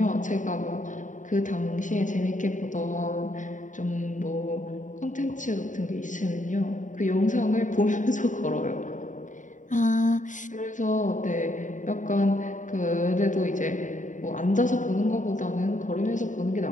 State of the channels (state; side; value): late; right; 0.37 ms